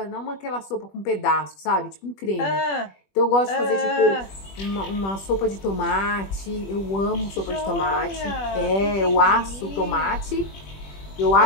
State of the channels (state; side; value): late; right; 21 ms